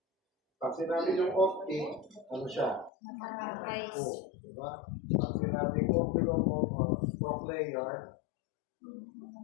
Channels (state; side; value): drops out; right; at 2.9 s